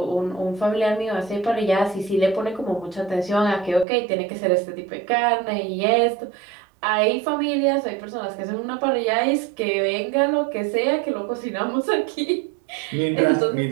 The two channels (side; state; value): left; drops out; at 3.9 s